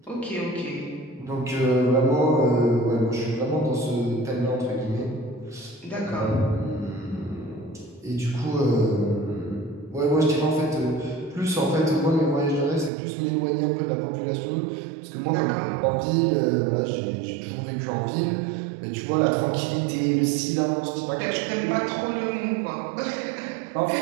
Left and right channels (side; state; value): left; drops out; at 12.9 s